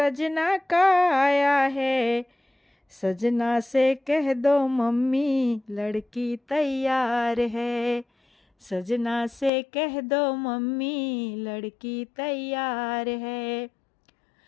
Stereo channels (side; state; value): right; drops out; at 9.5 s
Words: का आया है। सजना से कह दो मम्मी लड़की तैयार है। सजना से कह दो मम्मी लड़की तैयार है।